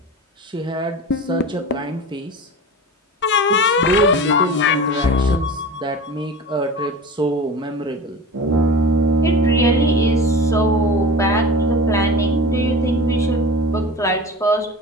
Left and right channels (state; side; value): normal; both; correlation 0.33